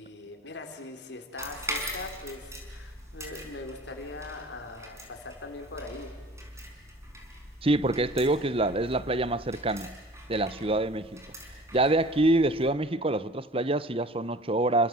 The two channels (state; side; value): normal; both; correlation 0.45